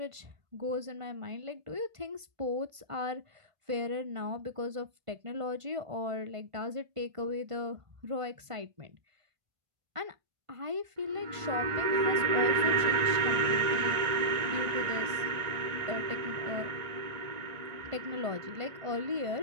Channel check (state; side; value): late; left; 1.5 ms